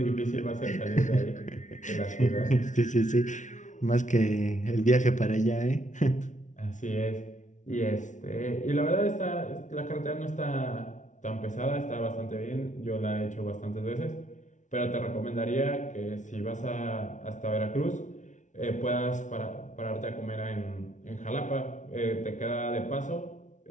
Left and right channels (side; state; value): right; late; 0.36 ms